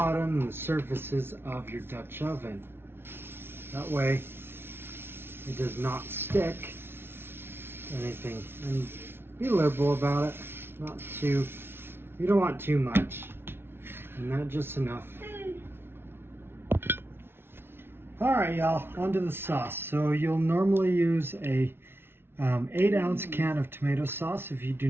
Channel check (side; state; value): left; late; 0.11 ms